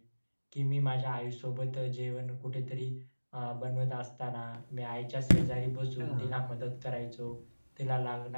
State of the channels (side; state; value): both; inverted; correlation -1.00